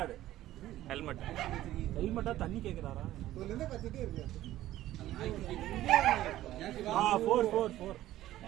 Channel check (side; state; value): left; quieter; 14.3 dB